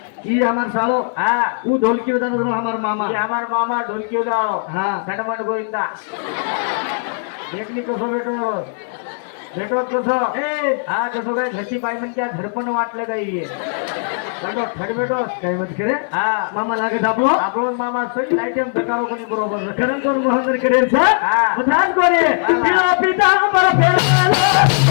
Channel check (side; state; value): right; silent; 61 dB below the other